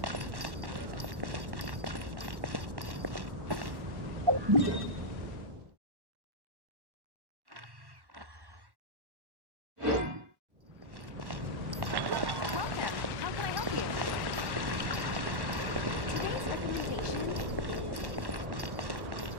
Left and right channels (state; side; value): late; left; 1.1 ms